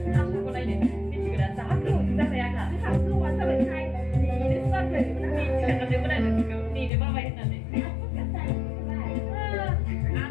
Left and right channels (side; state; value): right; drops out; at 6.9 s